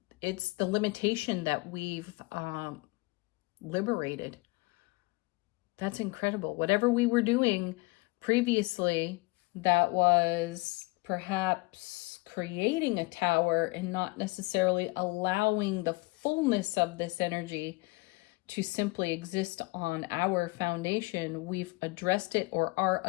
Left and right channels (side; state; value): right; quieter; 24.3 dB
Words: the limitation that we've liberated. That's incredible. Whatever we were doing previously that was perhaps creating a tower and not necessarily allowing the fullness of this energy to simply exist on our foundation, we've addressed it or are